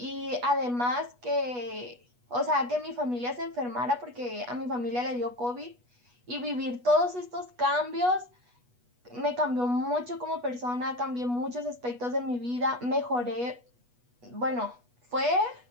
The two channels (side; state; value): left; late; 8.2 ms